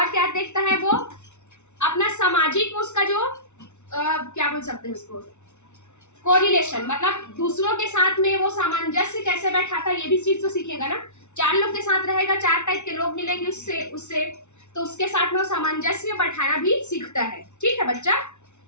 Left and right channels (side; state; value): right; late; 0.82 ms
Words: क्या देखता है वो, अपना सामाजिक उसका जो क्या बोल सकते हैं उसको, कोरिलेशन, मतलब दूसरों के साथ में वो सामंजस्य कैसे बैठाता है, ये भी चीज तो सीखेगा ना। चार लोग के साथ रहेगा, चार टाइप के लोग मिलेंगे उससे तो उसके साथ में वो सामंजस्य बैठाना भी सीखता है। ठीक है बच्चा,